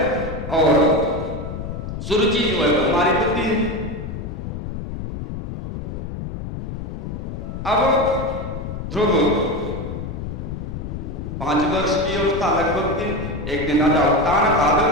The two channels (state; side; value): noise; left; rumble, 7 dB below the sound